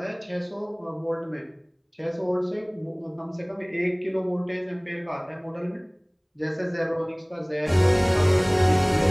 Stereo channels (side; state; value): both; identical; correlation 1.00